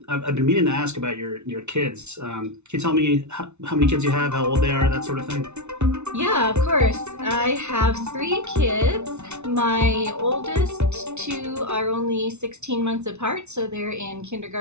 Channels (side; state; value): left; late; 0.82 ms